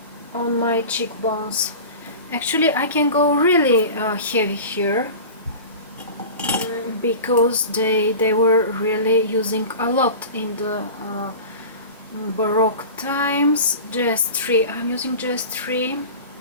on my cheekbones. Actually, I can go really heavy here, because they were really using a lot in the Baroque times. Jeffree, I'm using Jeffree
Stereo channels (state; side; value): inverted; both; correlation -0.34